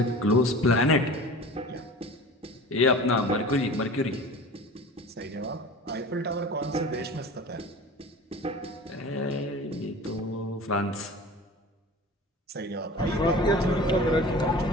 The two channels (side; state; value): both; normal; correlation 0.38